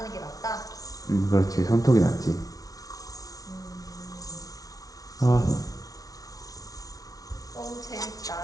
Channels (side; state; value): right; late; 0.18 ms